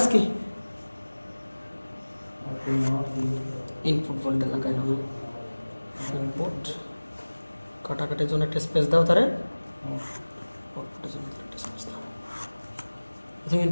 কি, ইনপুট ভোল্টেজ লাগাই নাও, ইনপুট কাটাকাটির জন্য একটা স্পেস দাও, তারে আউটপুটের জন্য একটা স্পেস দাও। প্রথমে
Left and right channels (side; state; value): both; inverted; correlation -1.00